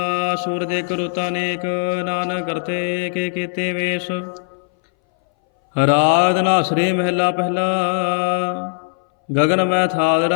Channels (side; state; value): right; silent; 62 dB below the other